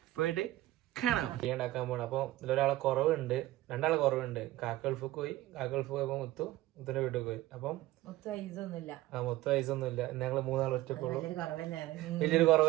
പോയിട്ട് കാണാം. ബിരിയാണി ഉണ്ടാക്കാൻ പോകണം. അപ്പൊ ഇതിലൊരാളെ കുറവുണ്ട്, രണ്ടാളെ കുറവുണ്ട്. കാക്കൾഫ് പോയി, കാക്കൾഫ് പോയപ്പോ മുത്തുന്റെ വീട്ടിൽ പോയി. അപ്പം മൊത്തം ഐസൊന്നുമില്ല. ഞങ്ങള് മൂന്നാൾ ഒറ്റക്കുള്ളൂ. വലിയൊരു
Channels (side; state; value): left; quieter; 16.6 dB